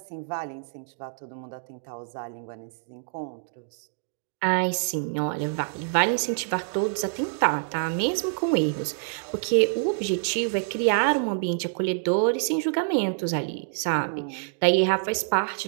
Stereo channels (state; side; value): silent; left; digital silence